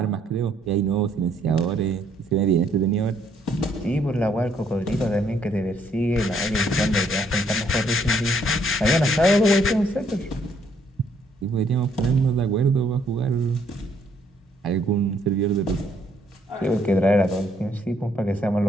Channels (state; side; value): normal; both; correlation 0.68